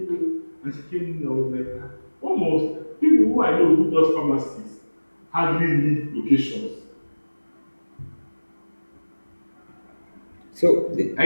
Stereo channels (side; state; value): both; inverted; correlation -1.00